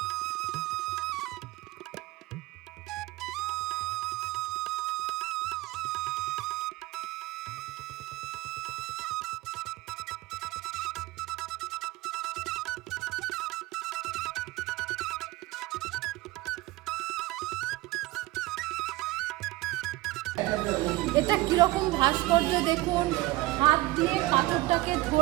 এটা কিরকম ভাস্কর্য দেখুন, হাত দিয়ে পাথরটাকে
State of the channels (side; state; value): left; quieter; 19.2 dB